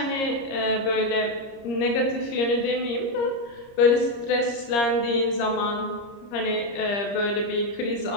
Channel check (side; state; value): right; late; 30 ms